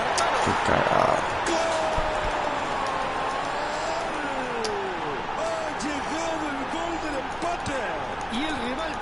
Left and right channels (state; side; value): identical; both; correlation 1.00